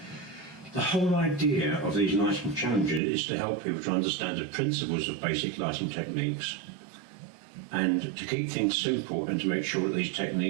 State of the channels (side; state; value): left; drops out; at 3.0 s